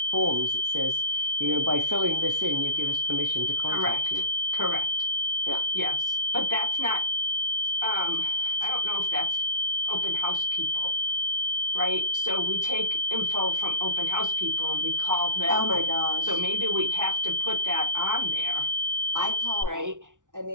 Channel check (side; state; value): left; late; 0.87 ms